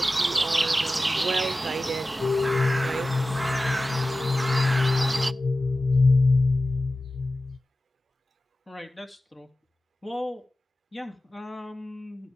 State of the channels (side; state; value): both; normal; correlation 0.95